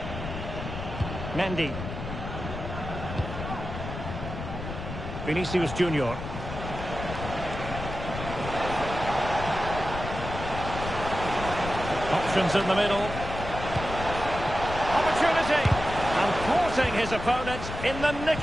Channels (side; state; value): left; noise; rumble, 7 dB below the sound